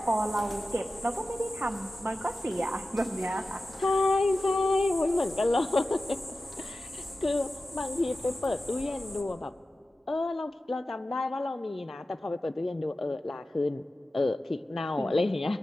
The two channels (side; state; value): both; normal; correlation 0.94